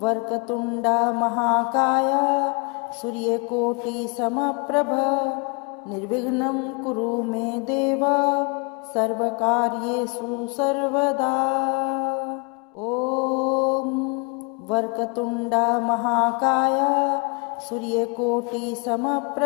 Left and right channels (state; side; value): quieter; right; 33.3 dB